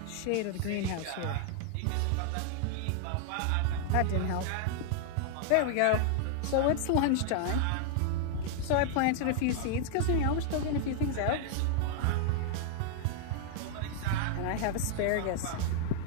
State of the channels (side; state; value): both; different; correlation 0.00